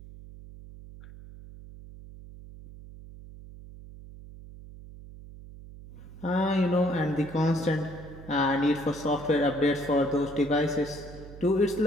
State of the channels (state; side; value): noise; right; hum, 16 dB below the sound